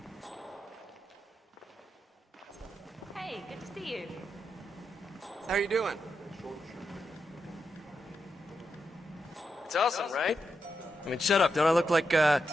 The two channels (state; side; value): normal; both; correlation 0.86